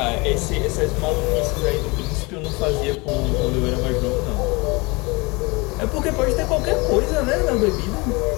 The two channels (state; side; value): quieter; right; 26.3 dB